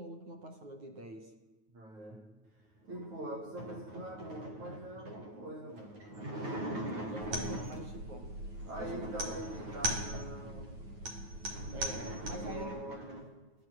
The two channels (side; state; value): left; late; 9.3 ms